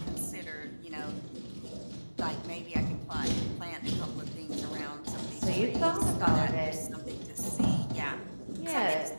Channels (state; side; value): inverted; both; correlation -1.00